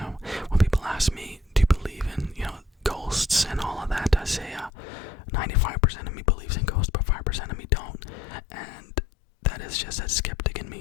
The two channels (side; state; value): right; drops out; at 4.7 s